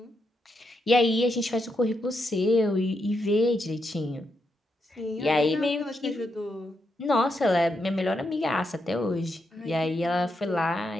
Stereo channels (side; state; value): both; normal; correlation 0.82